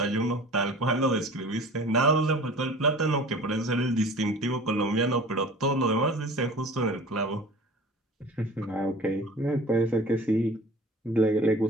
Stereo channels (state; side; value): normal; both; correlation 0.42